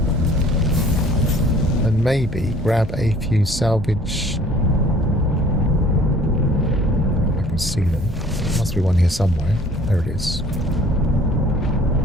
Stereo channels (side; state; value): both; normal; correlation 0.53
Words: And maybe grab a few salvage... I can see them. There must be one here somewhere. There it is.